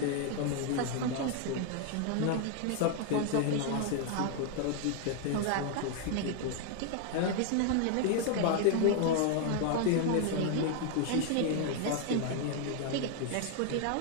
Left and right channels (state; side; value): different; both; correlation 0.00